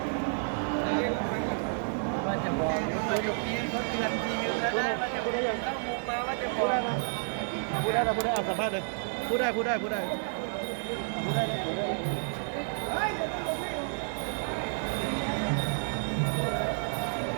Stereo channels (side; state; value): left; silent; digital silence